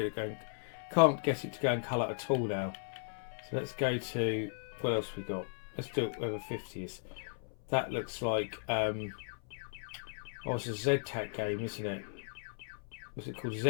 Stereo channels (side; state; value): right; silent; 54 dB below the other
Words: it to go in colour at all now. So let's go to, what else we got? Let's do it over 50s. That looks like it's a Z-Tac game, isn't it? Was it called